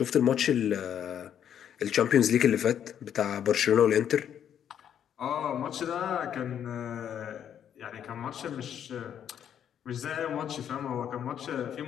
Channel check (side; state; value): right; quieter; 9.3 dB